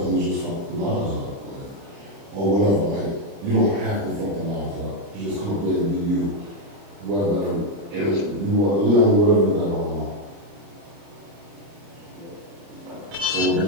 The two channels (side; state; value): left; late; 30 ms